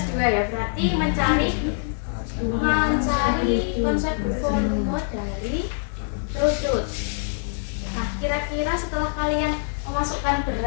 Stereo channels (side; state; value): right; silent; digital silence